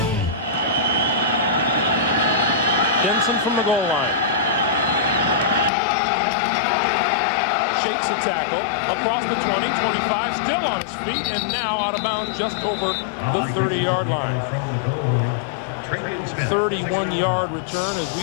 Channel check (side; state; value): right; drops out; at 5.7 s